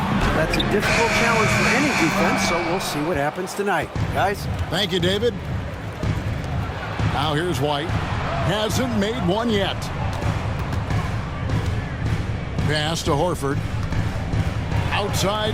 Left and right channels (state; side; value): identical; both; correlation 1.00